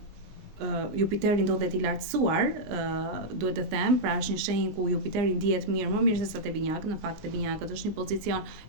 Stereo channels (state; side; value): late; left; 19 ms